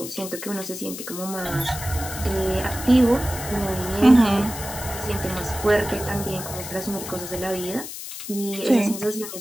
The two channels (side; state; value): left; noise; hiss, 9 dB below the sound